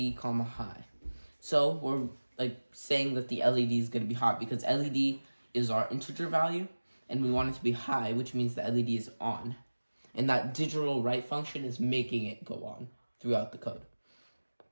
high. So we're like saying that the LED is going to be hot because LED is our integer value, and we want it to be high, which means the LED is on. And that digital write function is making it go on throughout the code.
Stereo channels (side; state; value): both; inverted; correlation -1.00